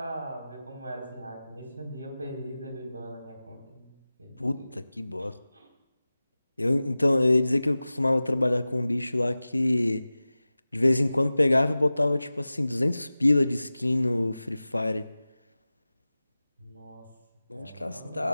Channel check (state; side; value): inverted; both; correlation -0.97